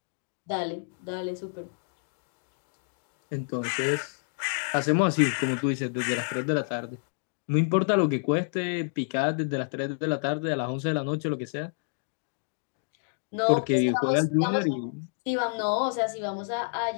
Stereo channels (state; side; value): silent; right; digital silence